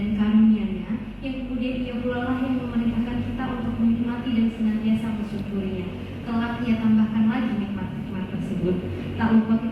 karunia-Nya, yang kemudian Ia pula lah yang memerintahkan kita untuk menikmati dan senantiasa bersyukurnya. Kelak Ia tambahkan lagi nikmat-nikmat tersebut. Tak lupa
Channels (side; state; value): both; identical; correlation 1.00